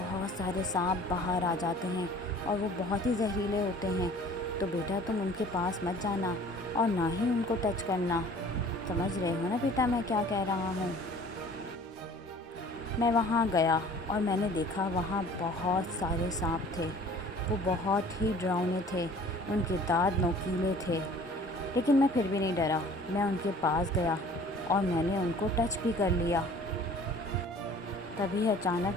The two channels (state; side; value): normal; both; correlation 0.49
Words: سارے سانپ باہر آ جاتے ہیں اور وہ بہت ہی زہریلے ہوتے ہیں، تو بیٹا تم ان کے پاس مت جانا اور نہ ہی ان کو ٹچ کرنا۔ سمجھ رہے ہو نا بیٹا میں کیا کہہ رہا ہوں؟ میں وہاں گیا اور میں نے دیکھا وہاں بہت سارے سانپ تھے۔ وہ بہت ہی ڈراؤنے تھے، ان کے دانت نوکیلے تھے، لیکن میں پھر بھی نہیں ڈرا۔ میں ان کے پاس گیا اور میں نے ان کو ٹچ بھی کر لیا۔ تبھی